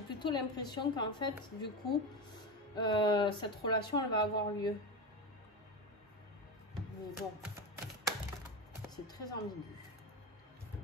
plutôt l'impression qu'en fait, du coup, cette relation, elle va avoir lieu. Mais bon, c'est très ambigu.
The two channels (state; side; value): normal; both; correlation 0.19